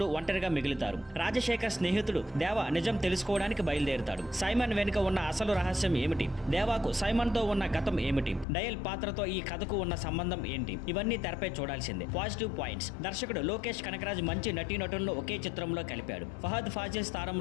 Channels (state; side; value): drops out; right; at 8.5 s